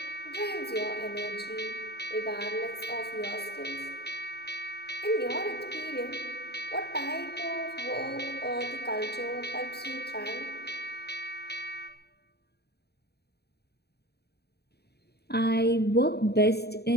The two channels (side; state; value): right; late; 0.47 ms